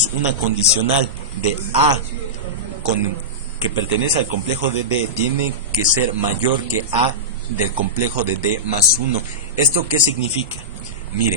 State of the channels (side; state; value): both; normal; correlation -0.15